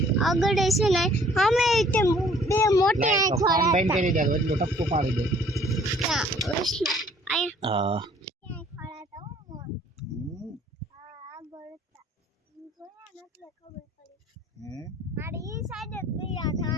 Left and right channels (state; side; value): normal; both; correlation 0.57